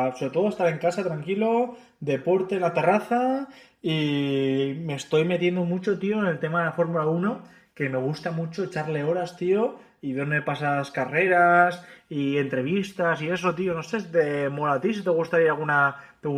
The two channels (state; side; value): identical; both; correlation 1.00